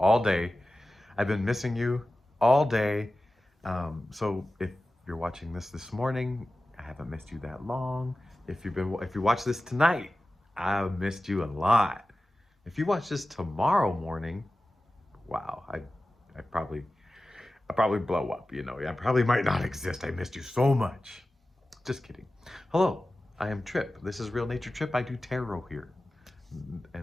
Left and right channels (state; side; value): normal; both; correlation 0.95